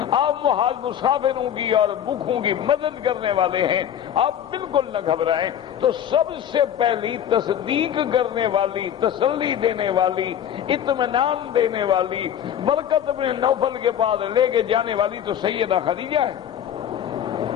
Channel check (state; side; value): quieter; right; 9.8 dB